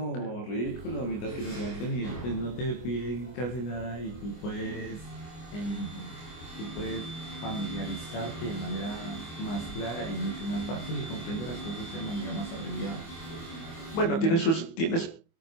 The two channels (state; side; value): late; right; 24 ms